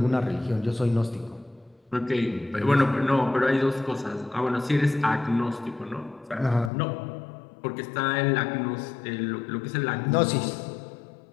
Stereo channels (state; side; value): drops out; right; at 6.7 s